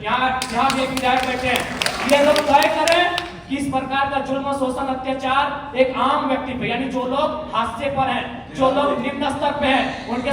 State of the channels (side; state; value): both; identical; correlation 1.00